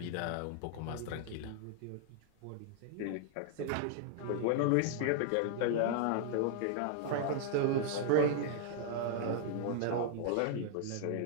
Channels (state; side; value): different; both; correlation -0.01